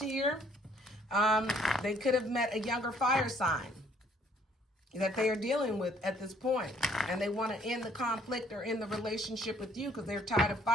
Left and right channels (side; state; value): both; normal; correlation 0.62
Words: They could have met a younger fire sign that they are dealing with at this point. And they want to end the conflict or end the relationship with you because they're tired of